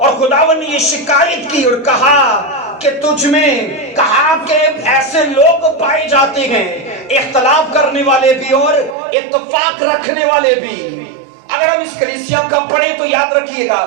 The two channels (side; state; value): left; drops out; at 9.0 s